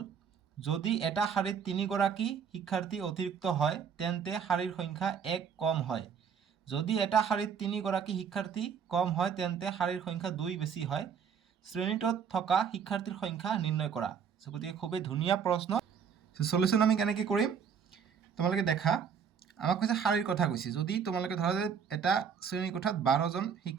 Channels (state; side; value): quieter; left; 7.1 dB